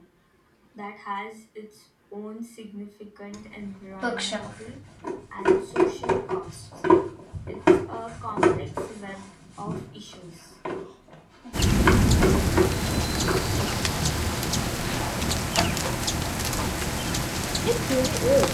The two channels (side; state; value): both; identical; correlation 1.00